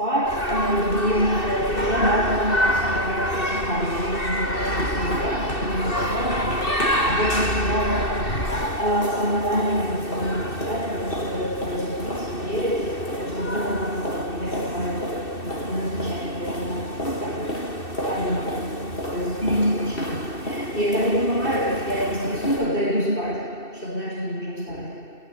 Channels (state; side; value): late; right; 2.6 ms